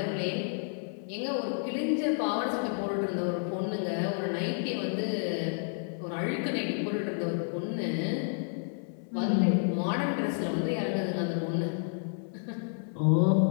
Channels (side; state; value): right; silent; 58 dB below the other